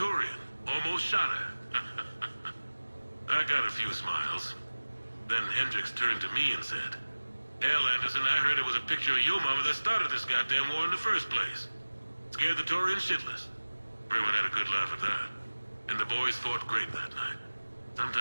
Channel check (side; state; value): both; inverted; correlation -1.00